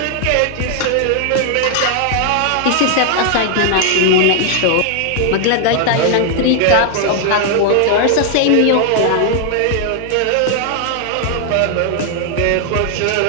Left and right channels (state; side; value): different; both; correlation 0.00